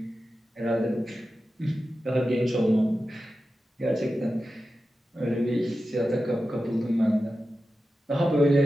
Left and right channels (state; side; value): normal; both; correlation 0.93